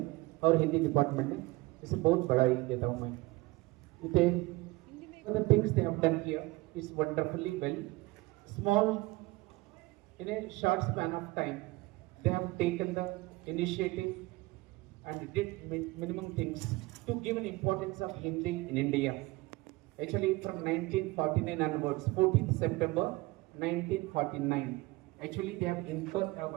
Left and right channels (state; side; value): quieter; left; 21.8 dB